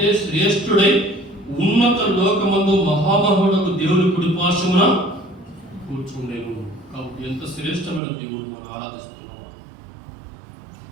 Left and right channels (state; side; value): drops out; left; at 8.0 s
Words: శ్రేష్ఠుడై ఉన్నత లోకమందు మహామహుడకు దేవుని కుడిపార్శ్వమున కూర్చుండేను. కాబట్టి ఎంత శ్రేష్టమైన దేవుడు మనం ఆరాధిస్తున్నాం.